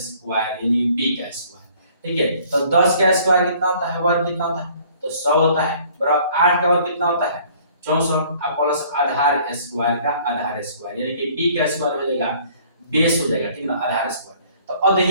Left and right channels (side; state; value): both; inverted; correlation -0.56